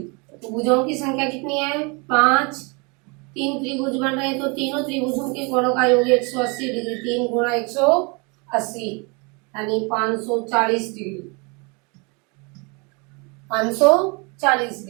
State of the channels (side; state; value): left; quieter; 30.8 dB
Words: तो भुजाओं की संख्या कितनी है? 5। 3 त्रिभुज बन रहे हैं, तो तीनों त्रिभुजों के कोणों का योग 180 डिग्री। 3 गुणा 180 यानी 540 डिग्री। 540